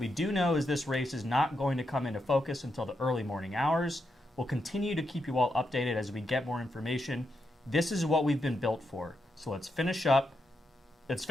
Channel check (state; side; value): normal; both; correlation 0.83